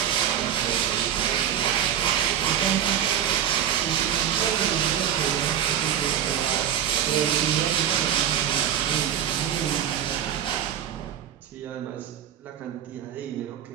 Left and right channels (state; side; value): quieter; left; 10.0 dB